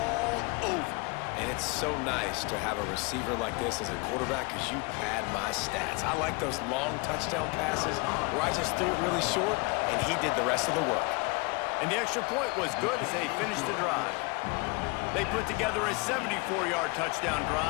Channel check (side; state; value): right; quieter; 28.4 dB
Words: over. And it's so nice to have a receiver like this as a quarterback because you pad my stats. I like those long touchdown passes where I just threw it really short and he did the rest of the work. And the extra point was good as they finished the drive. They put together a 74-yard touchdown